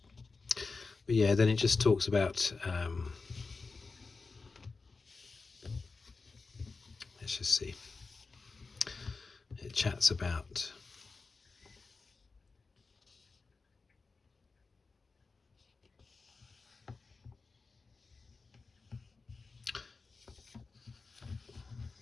But yeah, then it just talks about let's just see, it chats about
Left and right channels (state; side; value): quieter; right; 4.2 dB